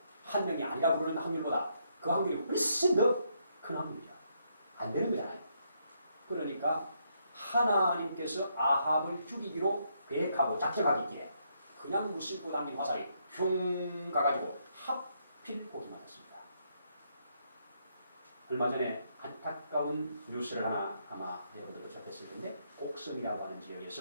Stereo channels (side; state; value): both; inverted; correlation -0.75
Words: 한 명이 아니라 부르는 확률보다 그 확률이 훨씬 더 큰 확률이죠. 안 되는 거잖아요. 그러니까 하나님께서 아합을 죽이기로 계획하고 작정하기에 그냥 무심코 당긴 화살이 흉 가가지고 하필 거기 맞았습니다. 얼마 전에 안타까운 뉴스를 하나 아마 여러분들도 접했을 텐데, 곡섬이라고 하는